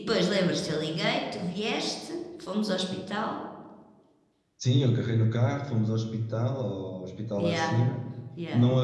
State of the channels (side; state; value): both; identical; correlation 1.00